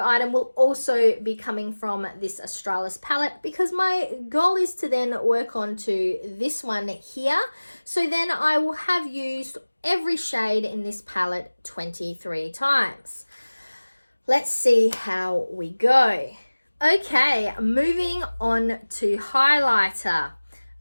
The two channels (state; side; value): inverted; both; correlation -1.00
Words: item will also be coming from this Australis palette, because my goal is to then work on to this one here. So then I will have used every shade in this palette 23 times. Let's see how we go. Okay, moving on to highlighter.